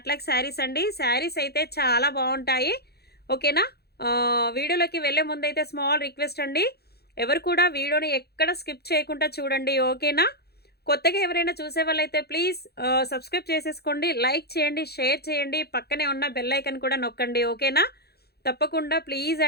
శారీస్ అండి. శారీస్ అయితే చాలా బాగుంటాయి. ఓకేనా? వీడియోలోకి వెళ్ళే ముందైతే స్మాల్ రిక్వెస్ట్ అండి. ఎవరు కూడా వీడియోని ఎక్కడ స్కిప్ చేయకుండా చూడండి. ఓకేనా? కొత్తగా ఎవరైనా చూసేవాళ్ళైతే ప్లీజ్ సబ్స్క్రైబ్ చేసేసుకోండి. లైక్ చేయండి, షేర్ చేయండి. పక్కనే ఉన్న బెల్ ఐకాన్ కూడా నొక్కండి. ఓకేనా? తప్పకుండా ప్లీజ్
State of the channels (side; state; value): right; late; 0.47 ms